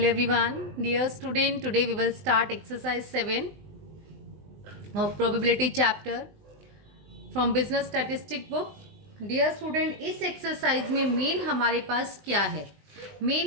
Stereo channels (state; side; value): late; left; 20 ms